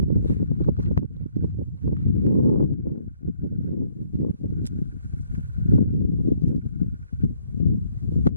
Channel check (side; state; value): both; inverted; correlation -0.66